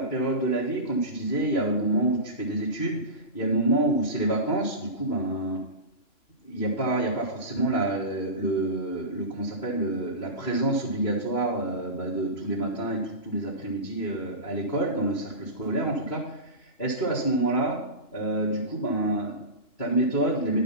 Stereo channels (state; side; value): late; right; 2.9 ms